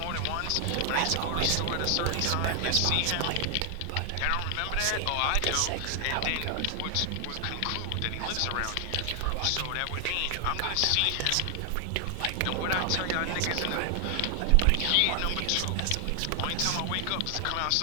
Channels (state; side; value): different; both; correlation 0.00